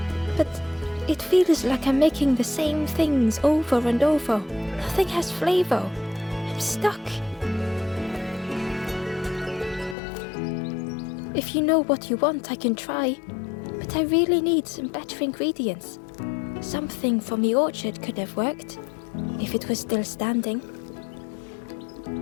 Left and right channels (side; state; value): right; drops out; at 10.0 s